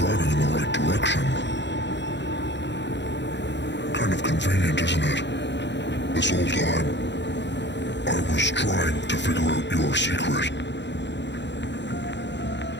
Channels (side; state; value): right; late; 0.52 ms